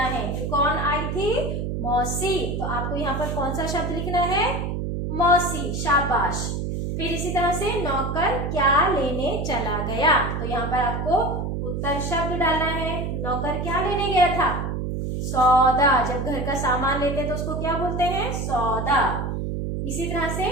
जो कौन आई थी? मौसी। तो आपको यहाँ पर कौन सा शब्द लिखना है? मौसी, शाबाश। फिर इसी तरह से नौकर क्या लेने चला गया, तो यहाँ पर आपको उत्तर शब्द डालना है। नौकर क्या लेने गया था? सौदा। जब घर का सामान लेते हैं तो उसको क्या बोलते हैं? सौदा। इसी तरह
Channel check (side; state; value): right; noise; hum, 2 dB below the sound